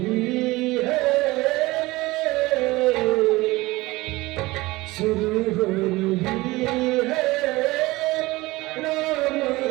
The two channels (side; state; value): left; quieter; 20.4 dB